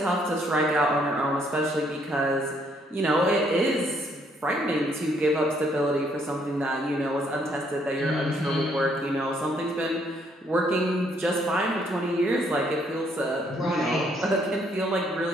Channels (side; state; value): both; normal; correlation 0.69